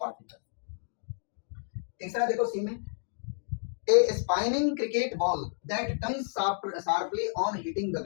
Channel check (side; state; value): right; silent; 57 dB below the other